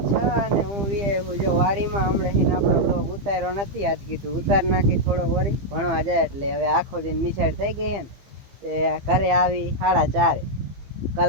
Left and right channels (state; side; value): late; left; 15 ms